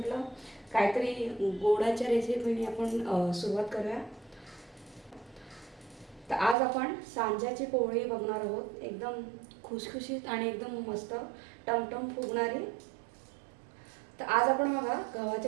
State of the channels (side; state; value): left; drops out; at 6.6 s